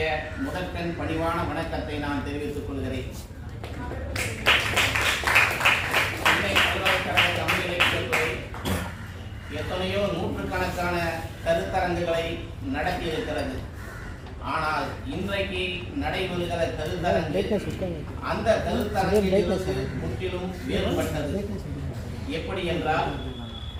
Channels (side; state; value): both; identical; correlation 1.00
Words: முதற்கண் பணிவான வணக்கத்தை நான் தெரிவித்துக் கொள்கிறேன். சென்னை பல்கலைக்கழக தமிழ் இலக்கியத்துறை எத்தனையோ நூற்றுக்கணக்கான கருத்தரங்குகளை நடத்தி இருக்கிறது. ஆனால் இன்றைக்கு நடைபெறுகிற கருத்தரங்கு அந்த கருத்தரங்கிலிருந்து முற்றிலும் வேறுபட்டது. எப்படி என்றால்,